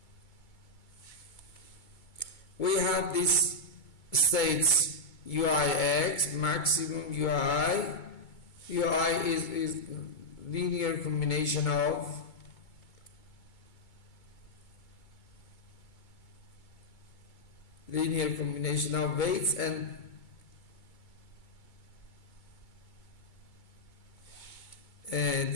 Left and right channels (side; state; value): right; late; 2.2 ms